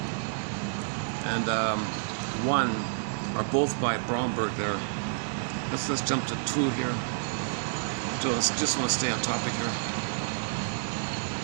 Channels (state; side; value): silent; left; digital silence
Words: and 1 are both by Bromberg there. Let's jump to 2 here. Just want to stay on topic here.